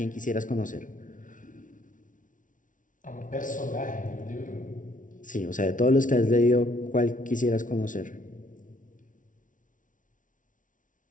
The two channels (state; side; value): late; right; 0.38 ms